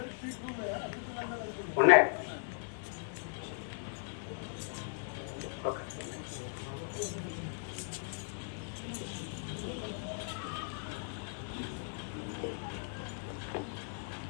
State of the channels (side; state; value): right; silent; 53 dB below the other